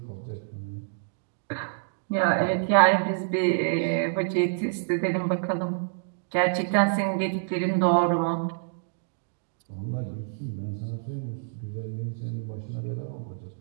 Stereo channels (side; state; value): left; silent; digital silence